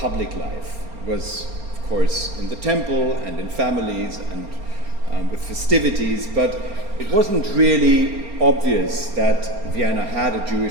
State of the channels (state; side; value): late; left; 4.3 ms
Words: life. It was, of course, in the temple and in families and with festivities, but it wasn't really obvious that Vienna had a